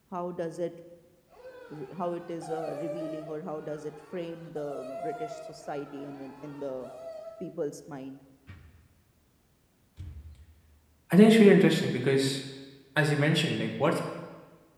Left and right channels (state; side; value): identical; both; correlation 1.00